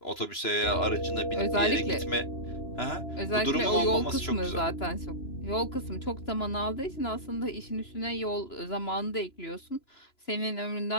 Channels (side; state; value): right; late; 2.9 ms